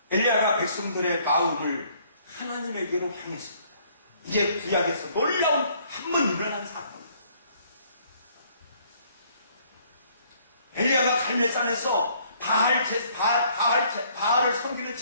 엘리야가 백성들의 마음을 하나님에게로 향했습니다. 이제 구약에서 놀라운 한 번 일어난 사건. 엘리야가 갈멜산에서 바알을 섬기는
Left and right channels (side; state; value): both; inverted; correlation -0.63